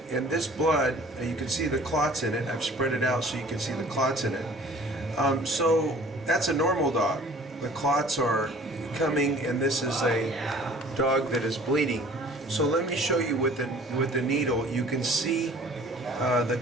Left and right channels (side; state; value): both; normal; correlation 0.50